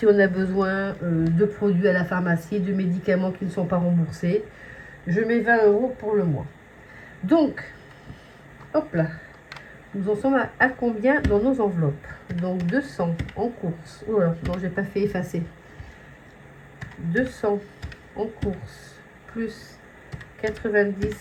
on a besoin de produits à la pharmacie, de médicaments qui ne sont pas remboursés. Je mets 20 euros pour le mois. Donc, hop là, nous en sommes à combien dans nos enveloppes? Donc 200 en course. Oh là, non, j'ai pas fait effacer. 200 en course, plus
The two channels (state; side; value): identical; both; correlation 1.00